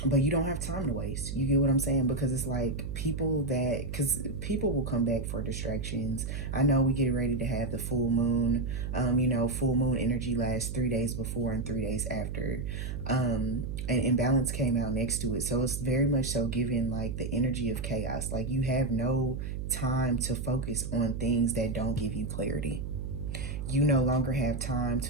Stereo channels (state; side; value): noise; right; hum, 5 dB below the sound